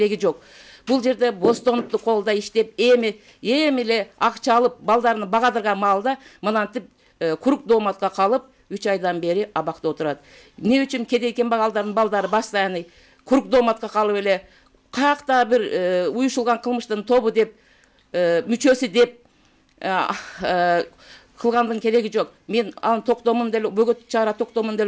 жок. Бул жерде Бостонупту колдо иштеп, эми эле акча алып, балдарын багадырган маалда мынантип курук дооматка калып, 3 айдан бери абакта отурат. Эмне үчүн кедей кембагалдардын балдары постоянный курук дооматка калып эле, каякта бир уюшулган кылмыштын тобу деп, мүчөсү деп кылгандын кереги жок. Мен анын токтомун деле, бөгөт чара токтомун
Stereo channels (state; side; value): identical; both; correlation 1.00